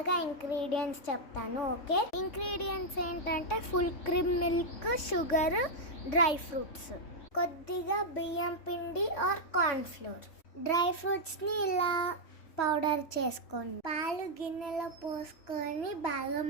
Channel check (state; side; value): late; right; 3.6 ms